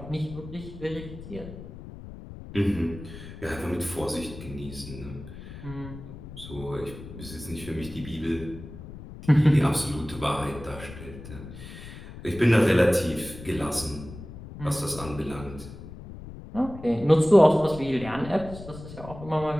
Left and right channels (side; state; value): left; noise; rumble, 13 dB below the sound